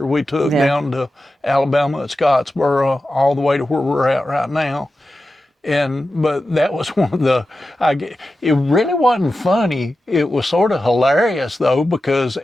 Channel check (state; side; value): normal; both; correlation 0.92